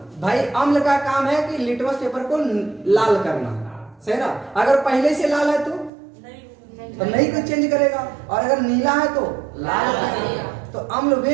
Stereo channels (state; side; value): drops out; left; at 5.9 s